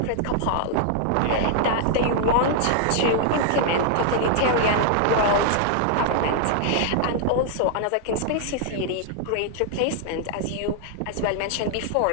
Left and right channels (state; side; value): different; both; correlation -0.01